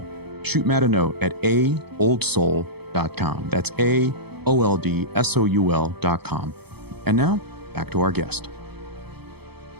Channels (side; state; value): left; late; 0.98 ms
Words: Shoot Matt a note at aoldsoul.com. That's AOLDSOUL.com. And now, back to our guest.